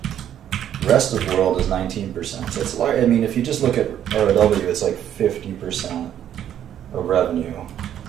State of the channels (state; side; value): quieter; left; 10.4 dB